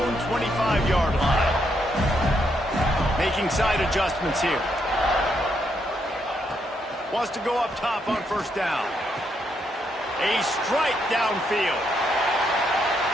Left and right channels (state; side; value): normal; both; correlation 0.77